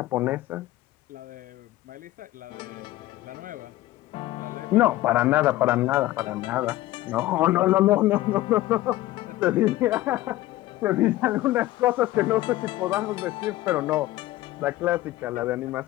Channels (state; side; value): quieter; right; 16.3 dB